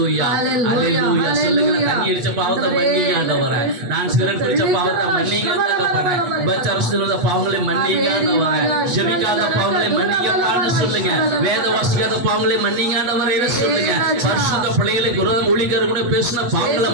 அல்லேலூயா. சொல்லுங்க, தண்ணி அடிச்ச பாவத்தை மன்னிங்க ஆண்டவரே, நான் சிகரெட் பிடிச்ச பாவத்தை மன்னிங்க ஆண்டவரே, உபச்சாரத்துல பாவங்களை மன்னிங்க ஆண்டவரே, ஜெபிக்காத பாவங்களை மன்னிங்கப்பான்னு சொல்லுங்க, வேத வாசிக்காத பாவங்களை மன்னிங்க ஆண்டவரே சொல்லுங்க, பரிசுத்த பிள்ளைகளுக்கு விரோதம் ஊழியக்காரர் கூட பேசின பாவங்களை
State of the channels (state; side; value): late; left; 8.2 ms